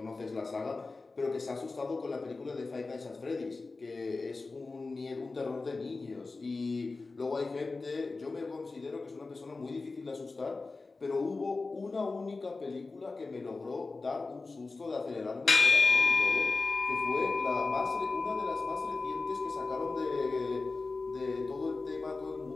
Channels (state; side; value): quieter; right; 3.8 dB